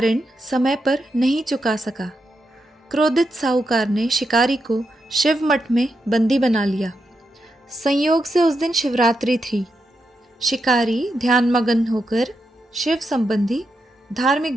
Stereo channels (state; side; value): normal; both; correlation 0.85